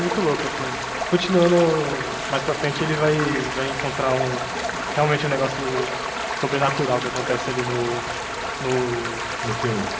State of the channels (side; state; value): both; identical; correlation 1.00